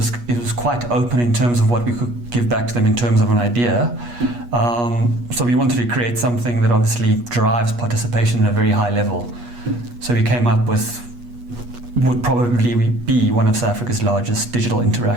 quite open in terms of what we could give back to them in terms of an idea. So we wanted to create something that obviously drives participation at a very high level. So we came up with would probably be one of South Africa's largest digital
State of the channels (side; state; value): left; late; 8.3 ms